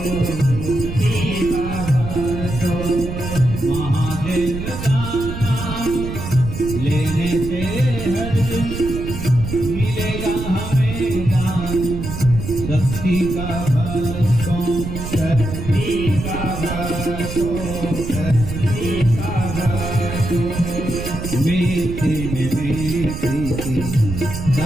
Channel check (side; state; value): right; noise; rumble, 6 dB below the sound